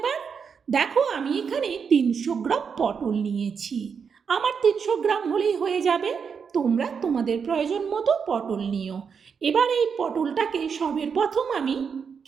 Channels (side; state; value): left; quieter; 6.3 dB